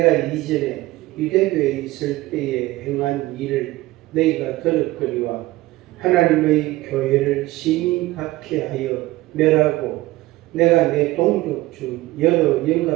이전에 유대교에 있을 때에 행한 일을 너희가 들었거니와 하나님의 교회를 심히 박해하여 멸하고 내가 내 동족 중 여러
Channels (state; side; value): quieter; left; 18.5 dB